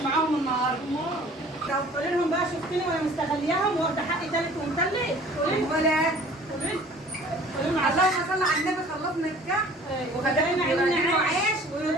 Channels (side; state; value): both; normal; correlation 0.49